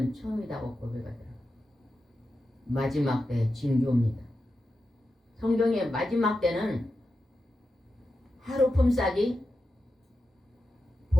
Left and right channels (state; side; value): normal; both; correlation 0.90